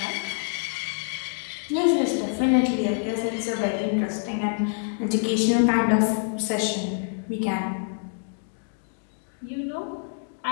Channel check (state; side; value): silent; right; digital silence